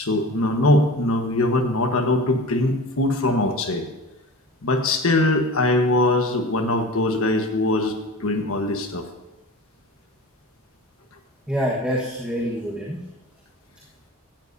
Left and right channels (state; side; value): normal; both; correlation 0.36